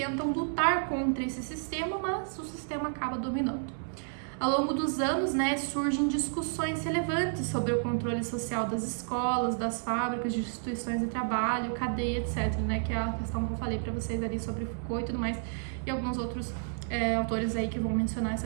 lutar contra esse sistema, mas o sistema acaba dominando. Ao longo dos anos, né, surgem discussões relevantes sobre o controle social das escolas, das fábricas, de instituições de trabalho, cadeia, etc, né, que é a questão que eu falei para vocês ali sobre Foucault e tudo mais, e alguns outros autores aí que vão mencionar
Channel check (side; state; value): left; silent; 57 dB below the other